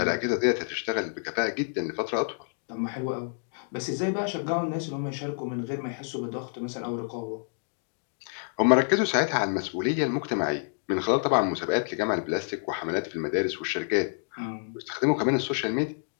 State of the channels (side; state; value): right; silent; 59 dB below the other